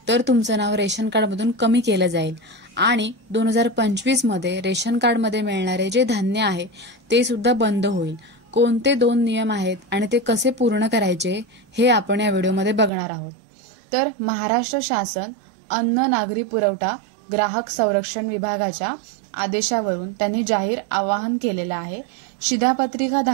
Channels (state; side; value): drops out; left; at 12.9 s